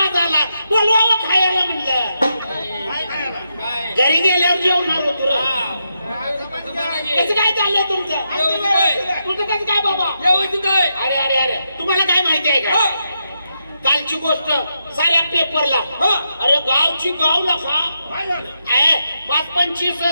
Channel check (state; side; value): inverted; both; correlation -0.83